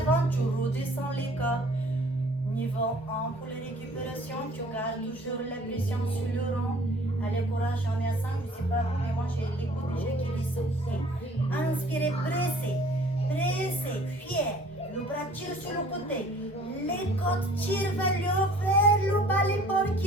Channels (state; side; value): normal; both; correlation 0.52